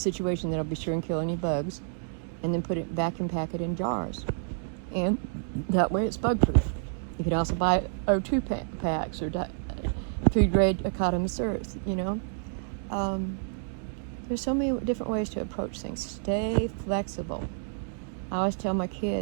that'll be sure and kill any bugs, and then vacuum pack it in jars. And that way it's bug-proof. You could also buy O2 packs or food-grade Academy-Earth, There's so many different ways to approach things. Stay flexible. I always tell my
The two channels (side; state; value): left; silent; digital silence